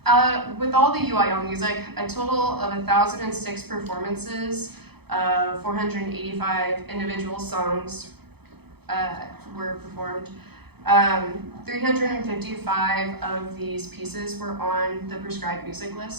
With all the UIL music, a total of 1,006 performances of 485 individual songs were performed. 355 of these pieces were on the prescribed music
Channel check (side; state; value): left; late; 0.98 ms